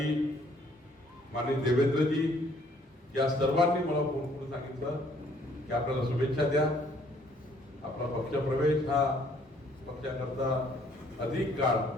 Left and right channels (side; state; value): both; normal; correlation 0.62